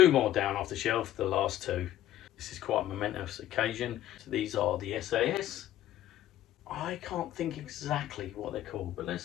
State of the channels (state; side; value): quieter; right; 12.8 dB